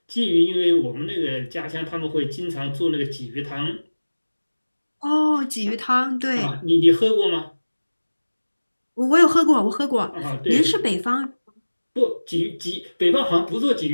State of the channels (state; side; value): inverted; both; correlation -1.00